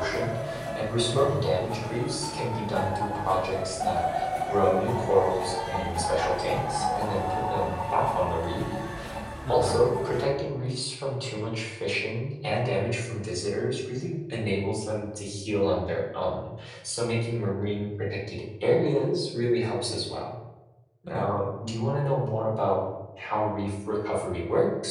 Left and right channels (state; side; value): identical; both; correlation 1.00